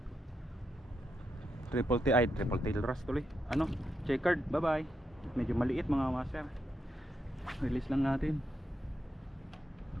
triple tail wrasse tuloy. Checkered, bye bye. Medyo maliit mga master. Release lang natin.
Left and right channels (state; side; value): normal; both; correlation 0.83